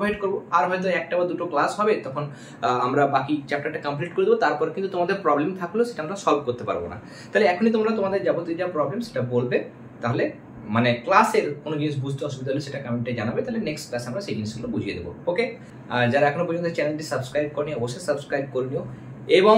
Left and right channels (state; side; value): identical; both; correlation 1.00